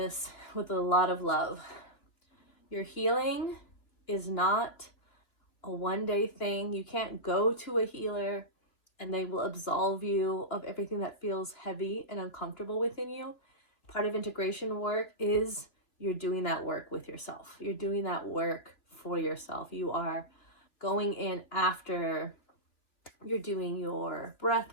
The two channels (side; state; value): right; late; 2.9 ms